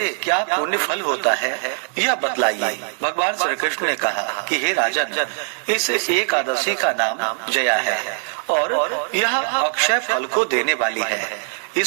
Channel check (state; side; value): silent; left; digital silence